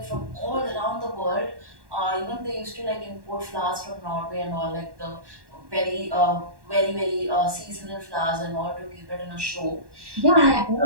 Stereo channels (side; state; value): left; late; 1.1 ms